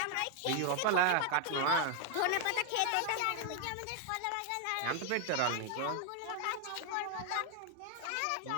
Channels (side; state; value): both; different; correlation 0.00